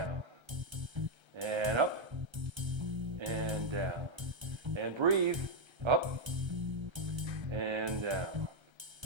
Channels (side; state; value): left; late; 1.3 ms